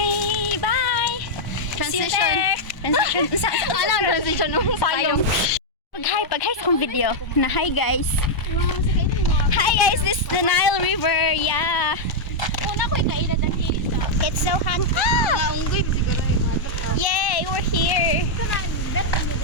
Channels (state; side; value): late; right; 1.0 ms